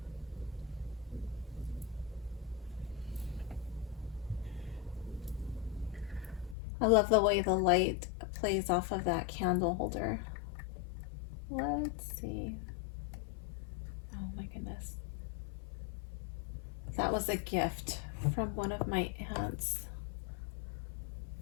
I love the way the light plays off of that candle holder. Let's see. Oh my goodness. That was a gift from one of my aunts.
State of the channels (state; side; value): drops out; right; at 6.6 s